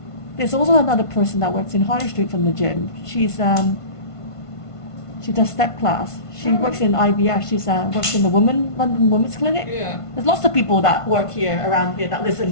also another person that works in Harley Street from the gym. She does step class. She works in IVF. She works in the London Women's Clinic. Yeah. There's lots of people that work here around here that live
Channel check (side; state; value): right; late; 1.5 ms